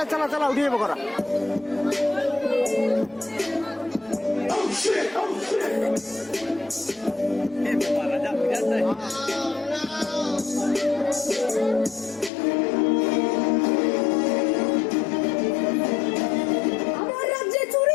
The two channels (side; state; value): right; drops out; at 12.3 s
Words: চালা চালা উঠিয়ে করা। রাজা বুঝাতে আমার রাজ্যে